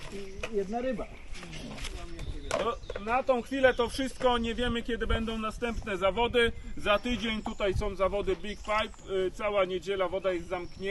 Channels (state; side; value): identical; both; correlation 1.00